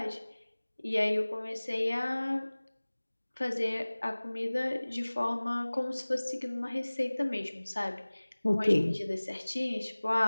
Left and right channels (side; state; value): both; inverted; correlation -1.00